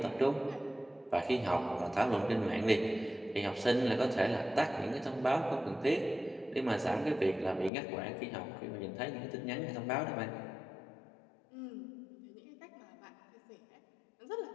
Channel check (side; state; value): right; drops out; at 7.7 s